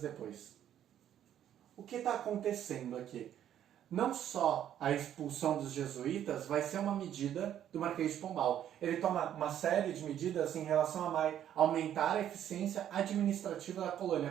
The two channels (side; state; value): left; quieter; 10.6 dB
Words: depois. o que está acontecendo aqui? Não só a expulsão dos jesuítas vai ser uma medida do Marquês de Pombal. Ele toma uma série de medidas em relação a aumentar a eficiência administrativa da colônia.